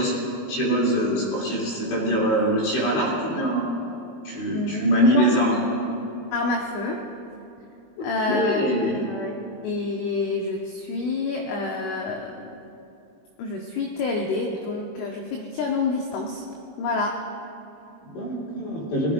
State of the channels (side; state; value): right; late; 21 ms